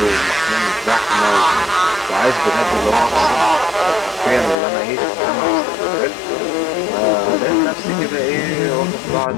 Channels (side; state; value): right; drops out; at 4.5 s